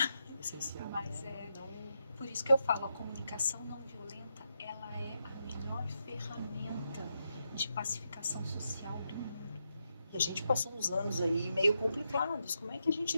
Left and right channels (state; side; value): inverted; both; correlation -0.84